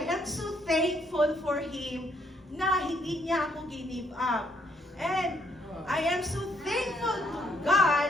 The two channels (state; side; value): normal; both; correlation 0.71